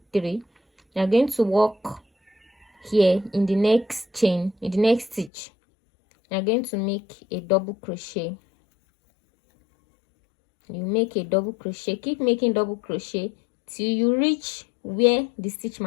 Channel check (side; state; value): right; drops out; at 5.3 s